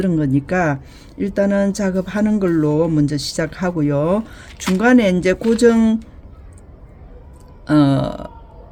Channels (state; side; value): identical; both; correlation 1.00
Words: 거니까 일단은 작업하는 걸로 먼저 시작하고요. 중간에 이제 고정 어,